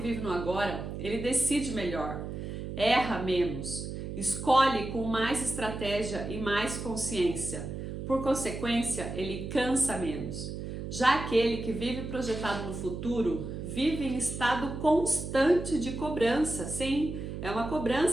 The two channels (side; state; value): right; noise; hum, 6 dB below the sound